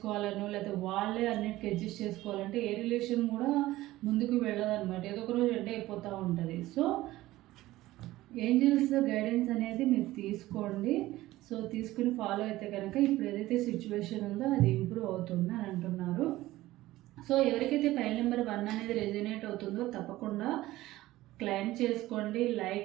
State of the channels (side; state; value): left; quieter; 16.8 dB